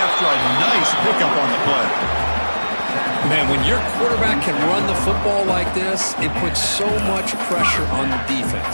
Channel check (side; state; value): both; inverted; correlation -1.00